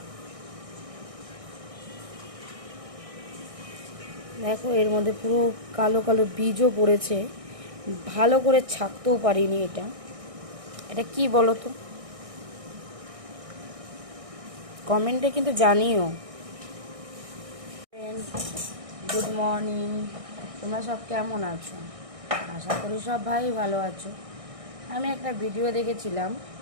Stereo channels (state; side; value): late; left; 1.6 ms